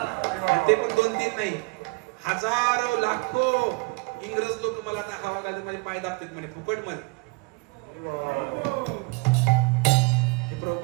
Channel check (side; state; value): left; quieter; 29.9 dB